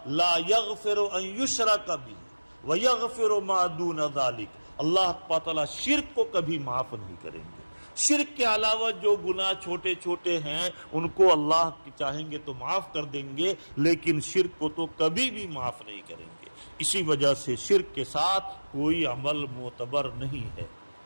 لا یغفر ان یشرک بہ ویغفر ما دون ذلک، اللہ تعالیٰ شرک کو کبھی معاف نہیں کریں گے۔ شرک کے علاوہ جو گناہ چھوٹے چھوٹے ہیں ان کو اللہ چاہیں گے تو معاف کر دیں گے، لیکن شرک کو تو کبھی بھی معاف نہیں کریں گے۔ اسی وجہ سے شرک کے ساتھ کوئی عمل معتبر نہیں ہے۔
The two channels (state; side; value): inverted; both; correlation -1.00